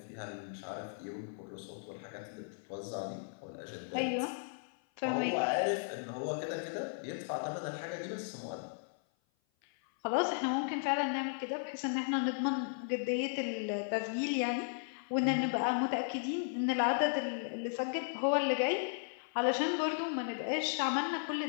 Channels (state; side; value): silent; right; 54 dB below the other